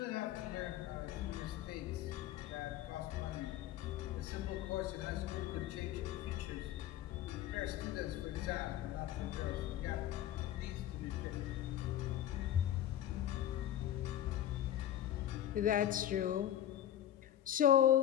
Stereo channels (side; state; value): right; quieter; 11.7 dB